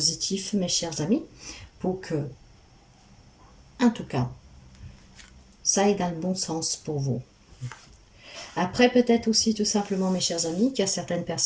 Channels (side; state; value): both; identical; correlation 1.00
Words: mes chers amis, pour que, en tout cas, ça aille dans le bon sens pour vous. Après, peut-être aussi tout simplement, mes chers amis, qu'il y a certaines